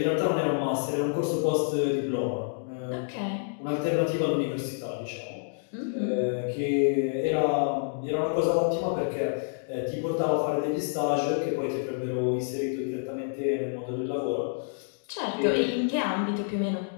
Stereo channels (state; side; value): silent; right; digital silence